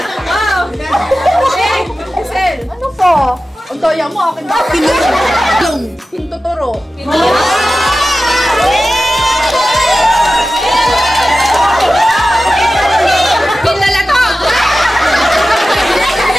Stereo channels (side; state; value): both; normal; correlation 0.94